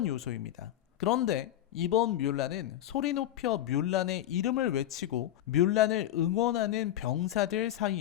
요소입니다. 그런데 이번 뮬란은 소리 높여 뮬란의 이름을 외치고 뮬란을 응원하는 병사들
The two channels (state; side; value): quieter; right; 12.6 dB